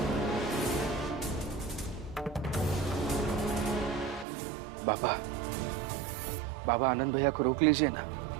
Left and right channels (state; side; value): drops out; left; at 4.2 s